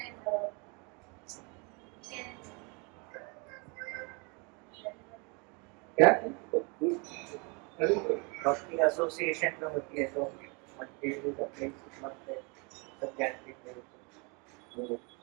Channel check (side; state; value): left; quieter; 31.8 dB